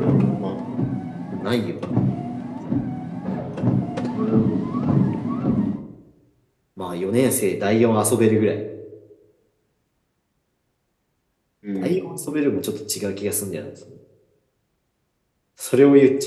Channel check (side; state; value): both; identical; correlation 1.00